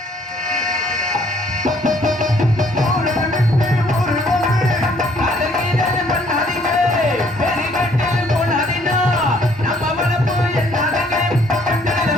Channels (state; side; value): normal; both; correlation 0.63